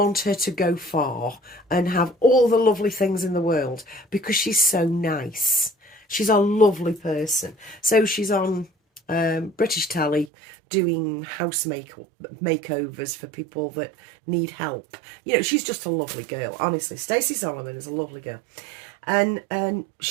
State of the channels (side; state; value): left; drops out; at 10.3 s